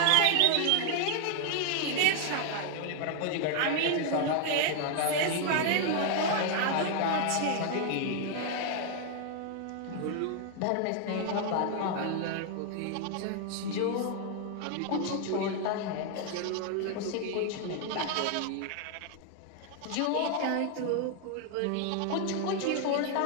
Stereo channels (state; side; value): different; both; correlation 0.00